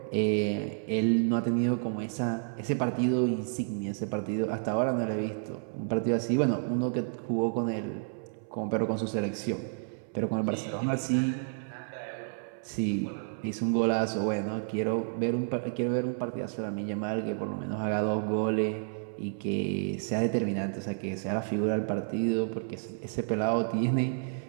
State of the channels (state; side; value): silent; left; 57 dB below the other